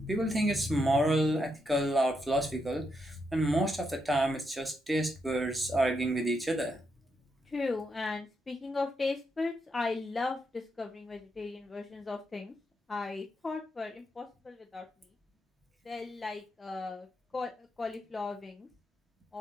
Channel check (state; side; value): normal; both; correlation 0.81